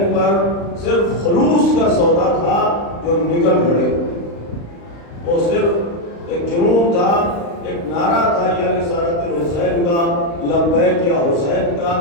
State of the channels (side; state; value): right; late; 35 ms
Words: پر صرف خلوص کا سودا تھا جو نکل پڑے. وہ صرف ایک جنون تھا، ایک نعرہ تھا یا رسالت الحسین کا، لبیک یا حسین کا،